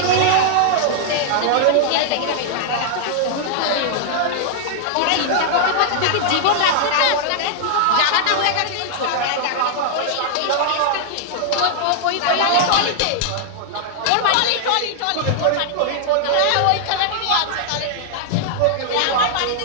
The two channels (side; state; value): both; different; correlation -0.01